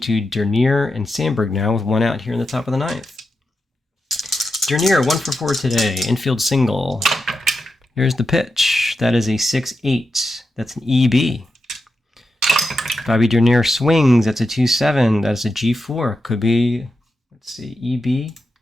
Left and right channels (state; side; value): normal; both; correlation 0.88